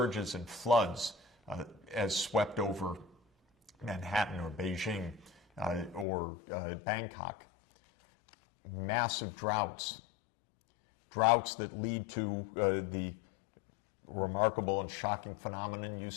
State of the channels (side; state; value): right; drops out; at 6.1 s